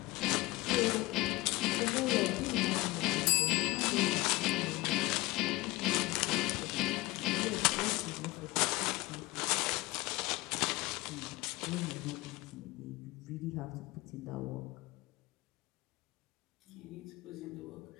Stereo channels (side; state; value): right; quieter; 20.9 dB